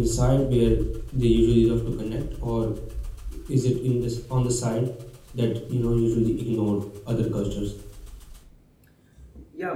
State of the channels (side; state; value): both; identical; correlation 1.00